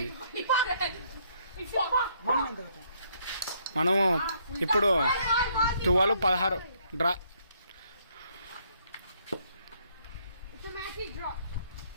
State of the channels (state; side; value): inverted; both; correlation -0.69